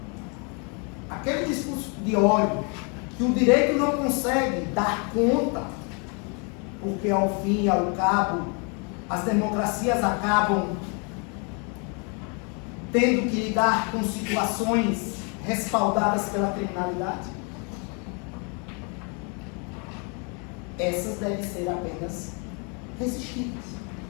Aquele discurso de ódio que o direito não consegue dar conta, porque ao fim e ao cabo as democracias acabam tendo que lidar com situações respaldadas pela criminalidade, essas devem ser apenas resistidas.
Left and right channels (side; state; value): right; quieter; 35.5 dB